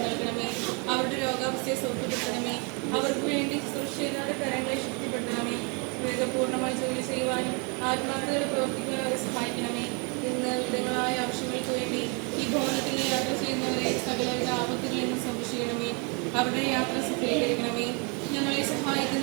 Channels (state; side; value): quieter; left; 33.5 dB